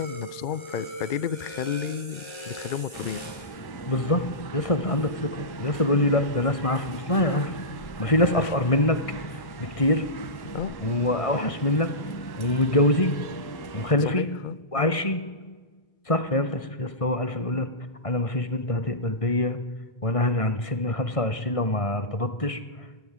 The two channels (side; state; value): right; late; 1.6 ms